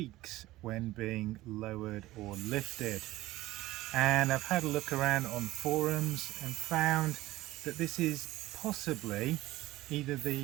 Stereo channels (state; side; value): quieter; left; 17.2 dB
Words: when being lowered or lifted. And I've had a look around on forums and found that this is possibly either